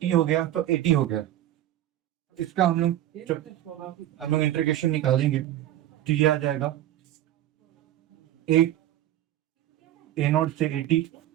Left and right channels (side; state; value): left; quieter; 13.1 dB